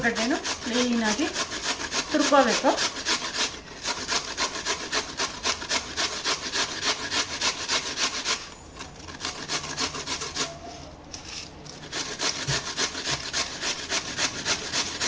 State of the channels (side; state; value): both; identical; correlation 1.00